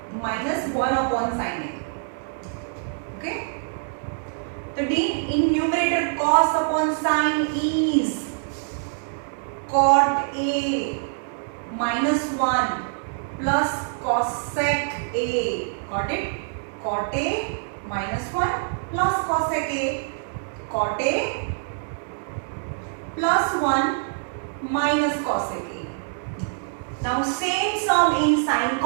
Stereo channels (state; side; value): silent; left; digital silence